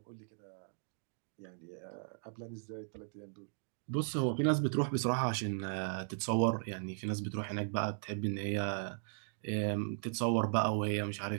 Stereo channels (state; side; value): silent; left; digital silence